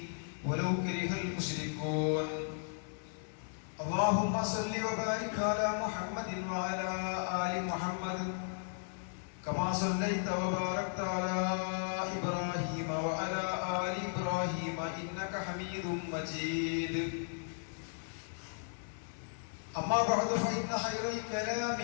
ولو كره المشركون اللهم صل وبارك على محمد وعلى آل محمد كما صليت وباركت على إبراهيم وعلى آل إبراهيم إنك حميد مجيد أما بعد فإن خير الكلام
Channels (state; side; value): silent; right; 54 dB below the other